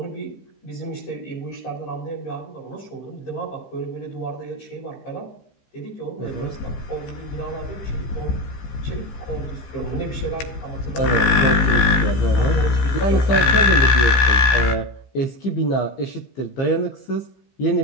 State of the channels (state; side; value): late; right; 15 ms